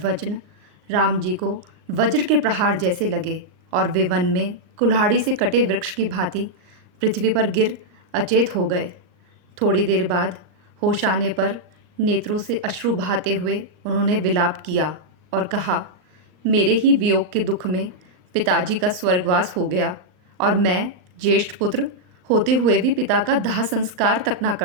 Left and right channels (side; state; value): left; late; 39 ms